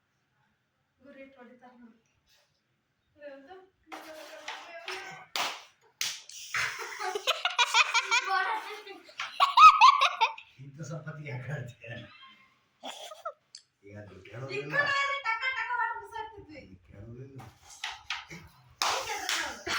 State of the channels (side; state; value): both; identical; correlation 1.00